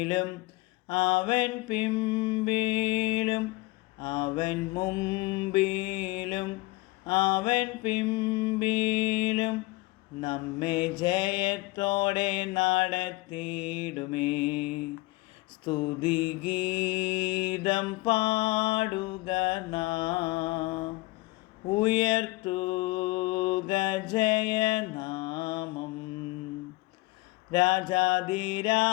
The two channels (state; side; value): quieter; right; 22.0 dB